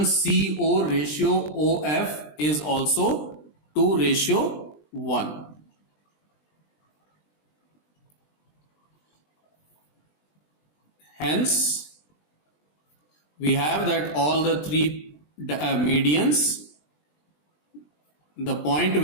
CO ratio OF is also 2:1. Hence, we have that all the three medians, the point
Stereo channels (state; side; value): late; right; 20 ms